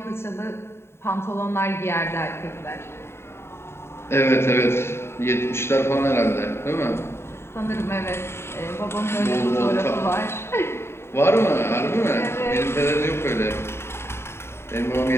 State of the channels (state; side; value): late; right; 0.12 ms